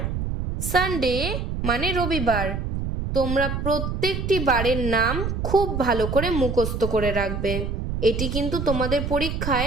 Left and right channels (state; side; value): noise; right; rumble, 3 dB below the sound